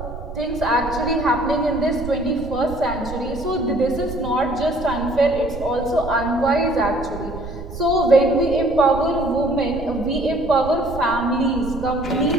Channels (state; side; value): noise; right; rumble, 11 dB below the sound